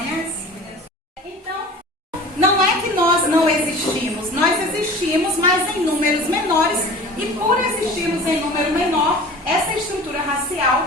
Então, não é que nós não existimos, nós existimos, mas em números menores, e por existirmos em número menor, essa estrutura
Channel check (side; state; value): both; normal; correlation 0.40